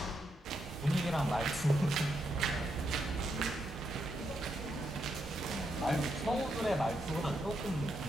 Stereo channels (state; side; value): normal; both; correlation 0.81